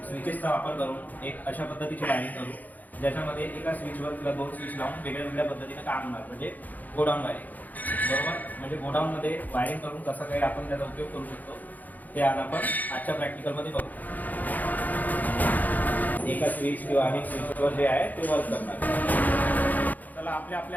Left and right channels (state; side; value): late; right; 0.082 ms